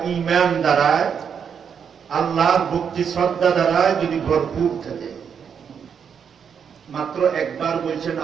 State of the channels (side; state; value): left; quieter; 7.2 dB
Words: ঈমান দ্বারায় আল্লাহর ভক্তি শ্রদ্ধা দ্বারায় যদি ভরপুর থাকে। মাত্র একবার বলছেন